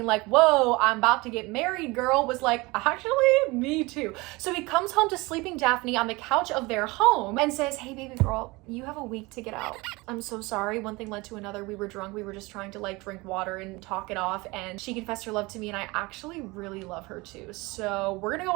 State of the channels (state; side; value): quieter; left; 23.6 dB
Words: like, whoa, I'm about to get married, girl, was like, actually, me too. So he comes home to sleeping Daphne on the couch of their home and says, hey baby girl, you have a week to get out. I'm so sorry, one thing led to another. We were drunk, we were just trying to like drink water and talk it off, and she confessed her love to me, and I actually really love her too. So we're gonna go